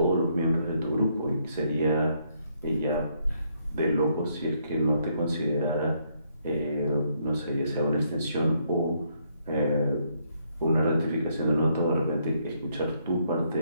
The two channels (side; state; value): both; inverted; correlation -0.72